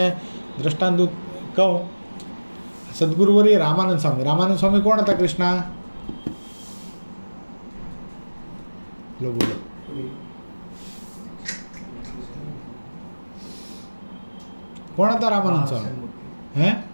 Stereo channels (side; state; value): both; inverted; correlation -1.00